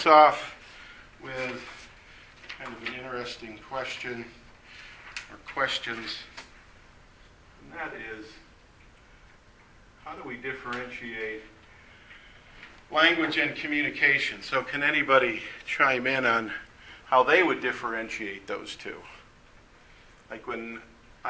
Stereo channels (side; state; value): both; identical; correlation 1.00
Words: off with kind of an interesting question or questions, and that is, how do we differentiate language and communication? So can anybody chime in on how they would differentiate those 2? Like when